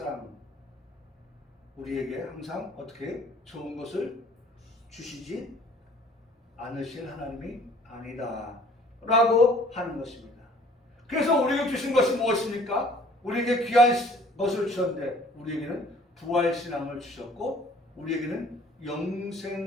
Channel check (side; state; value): both; normal; correlation 0.54